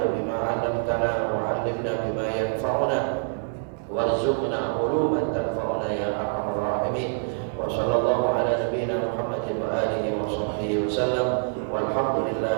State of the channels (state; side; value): silent; left; digital silence